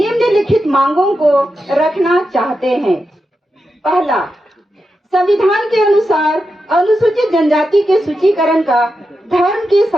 मांगों को रखना चाहते हैं। पहला, संविधान के अनुसार अनुसूचित जनजाति के सूचीकरण का धर्म के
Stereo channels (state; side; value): normal; both; correlation 0.88